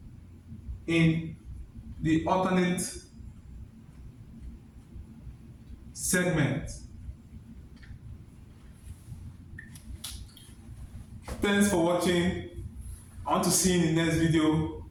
in the alternate segment. Thanks for watching. I want to see you in the next video.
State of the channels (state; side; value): identical; both; correlation 1.00